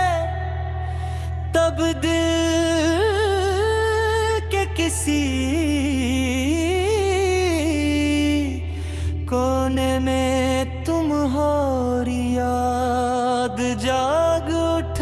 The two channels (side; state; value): both; identical; correlation 1.00